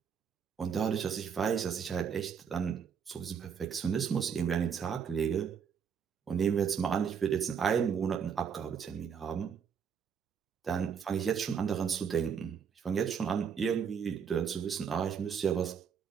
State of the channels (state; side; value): quieter; left; 7.1 dB